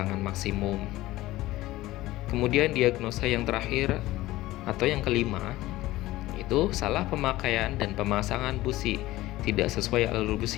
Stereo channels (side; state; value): right; quieter; 17.2 dB